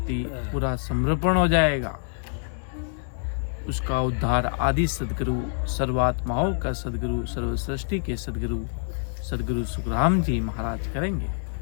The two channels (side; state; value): right; silent; digital silence